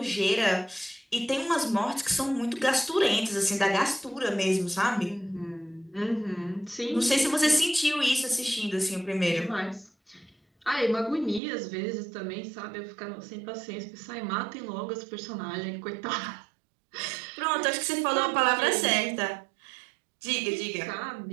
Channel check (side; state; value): left; drops out; at 11.4 s